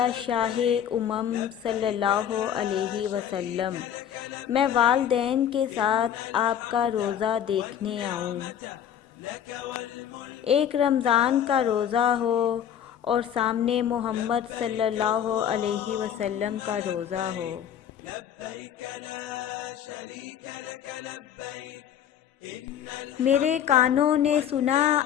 شاہ صلی اللہ علیہ وسلم، میں والدین کے ساتھ آپ کا روزہ دیکھنے آؤں۔ ایک رمضان کا روزہ ہو اور سامنے محمد صلی اللہ علیہ وسلم کا روزہ ہو۔ میرے کانوں نے سنا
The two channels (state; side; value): quieter; right; 9.5 dB